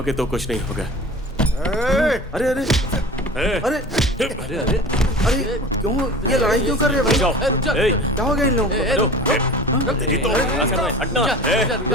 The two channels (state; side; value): normal; both; correlation 0.39